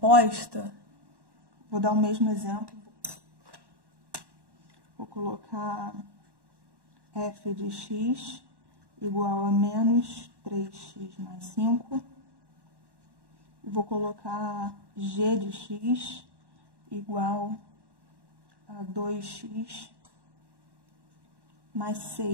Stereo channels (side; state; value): left; late; 1.1 ms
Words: vou dar o mesmo exemplo. Vou colocar f de x igual a menos 3x mais 5. E vou colocar g de x igual a 2x mais